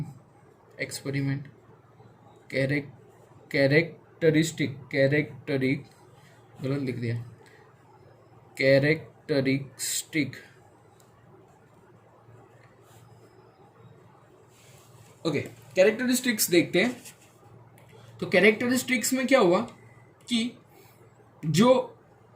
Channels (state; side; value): identical; both; correlation 1.00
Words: experiment. गलत लिख दिया। कैरेक्टरिस्टिक, ओके, कैरेक्टरिस्टिक्स देखते हैं। तो कैरेक्टरिस्टिक्स में क्या हुआ कि जो